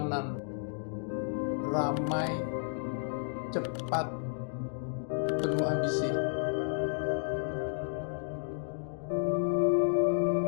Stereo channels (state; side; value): silent; right; digital silence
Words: ramai, cepat, penuh ambisi.